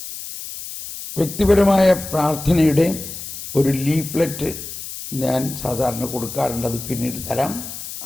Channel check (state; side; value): noise; left; hiss, 10 dB below the sound